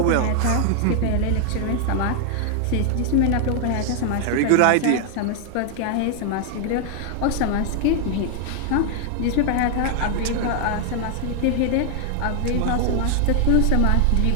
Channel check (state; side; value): different; both; correlation 0.00